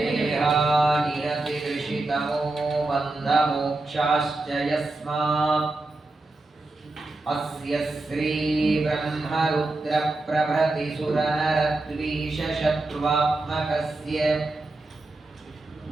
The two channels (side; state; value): left; quieter; 3.0 dB